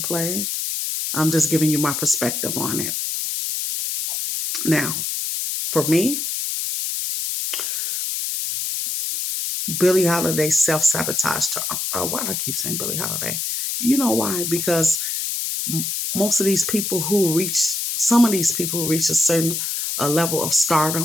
play. I'm just giving you my perspective on it. Now, for me, Billie Holiday self-sabotaged her. Why do I keep saying Billie Holiday? You know why? Because most of these people who reach, some of these people who reach a certain level of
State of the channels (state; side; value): noise; left; hiss, 2 dB below the sound